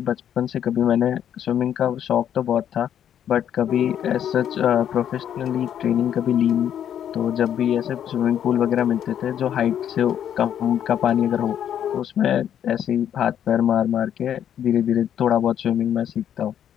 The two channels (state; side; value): quieter; right; 9.7 dB